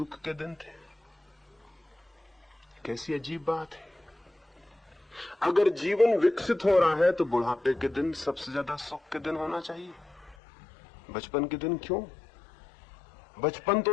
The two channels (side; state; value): right; drops out; at 10.4 s